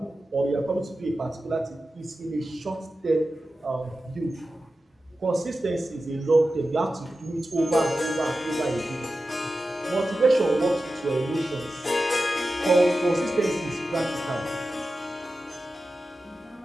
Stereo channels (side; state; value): both; normal; correlation 0.93